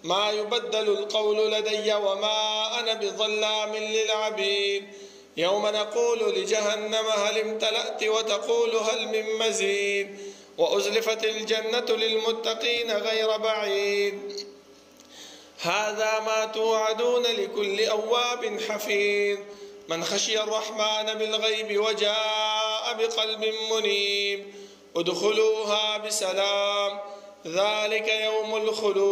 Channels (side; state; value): both; identical; correlation 1.00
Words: ما يبدل القول لدي وما أنا بظلام للعبيد يوم نقول لجهنم هل امتلأت وتقول هل من مزيد وأزلفت الجنة للمتقين غير بعيد هذا ما توعدون لكل أواب حفيظ من خشي الرحمن بالغيب وجاء بقلب منيب ادخلوها بسلام ذلك يوم